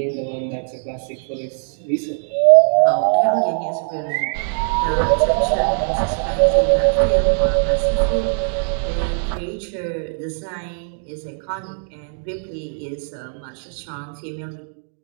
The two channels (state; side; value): silent; left; digital silence